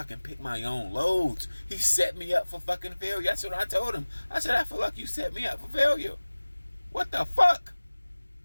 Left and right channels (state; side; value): inverted; both; correlation -1.00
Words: can pick my own loads. He set me up for fucking failure. That's what I told him. I said, I feel like you set me up for failure. What the fuck?